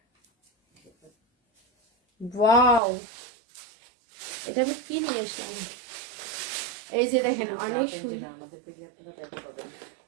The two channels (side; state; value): left; drops out; at 2.8 s